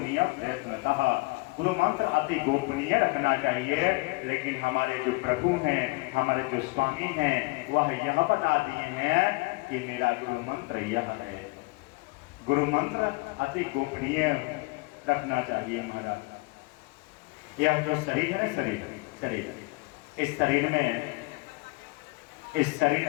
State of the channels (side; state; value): right; quieter; 25.4 dB